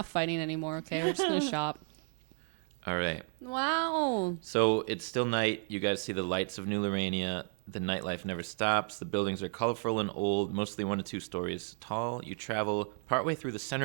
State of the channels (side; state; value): left; silent; 56 dB below the other